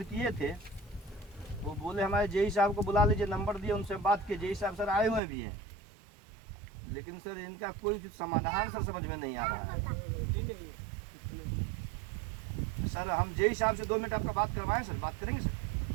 किए थे, वो बोले हमारे जेई साहब को बुला लीजिए, नंबर दिए, उनसे बात किए। जेई साहब सर आए हुए भी हैं, लेकिन सर इनका कोई समाधान सर समझ में नहीं आ रहा है। सर हम जेई साहब से 2 मिनट आपका बात करवाएं सर, बात करेंगे sir?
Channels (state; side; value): drops out; left; at 5.2 s